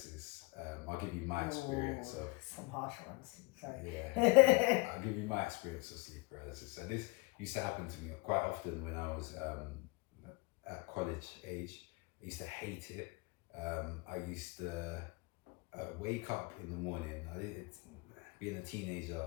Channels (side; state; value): right; quieter; 24.6 dB